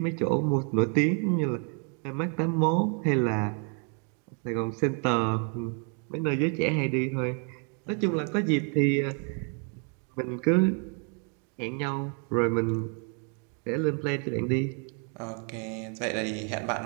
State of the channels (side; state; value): left; quieter; 40.0 dB